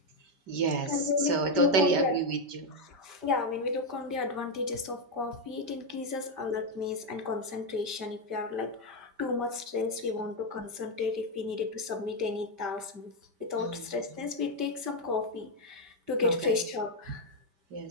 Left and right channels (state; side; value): late; left; 5.2 ms